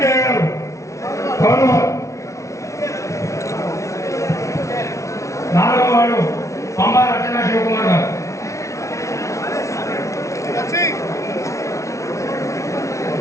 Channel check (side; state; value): right; late; 0.14 ms